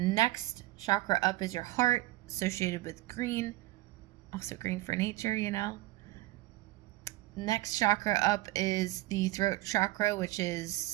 chakra up is your heart, associated with green, also green for nature, you know. Next chakra up is the throat chakra, which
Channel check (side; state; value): left; quieter; 18.5 dB